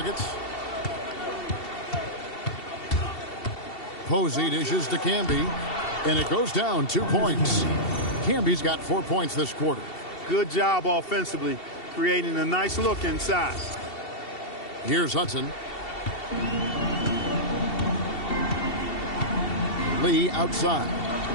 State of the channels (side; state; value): right; late; 2.7 ms